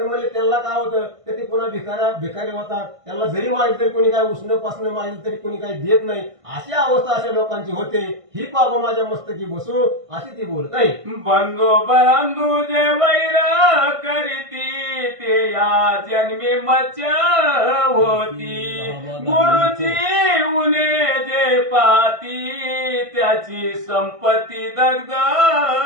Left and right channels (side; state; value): left; late; 1.5 ms